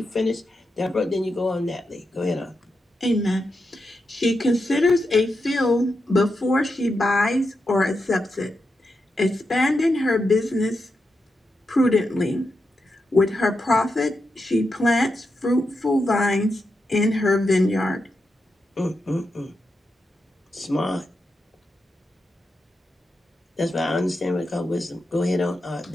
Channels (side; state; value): both; normal; correlation 0.87